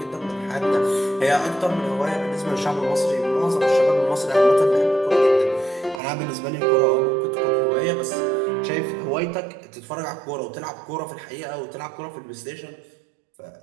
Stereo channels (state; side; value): drops out; left; at 6.0 s